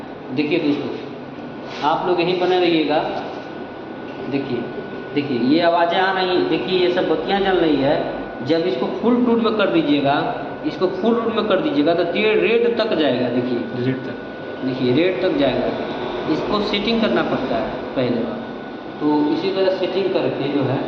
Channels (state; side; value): identical; both; correlation 1.00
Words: देखिए दोस्तों, आप लोग यहीं बने रहिएगा। देखिए ये आवाज़ें आ रही, देखिए ये सब बत्तियाँ जल रही है। जब इसको फुल टूट में कर दीजिएगा, इसको फुल टूट में कर दीजिएगा तो ये रेड तक जाएगा। देखिए रेड तक जाएगा। इसको सेटिंग करना पड़ता है पहले बार। तो इसी तरह सेटिंग करके जो है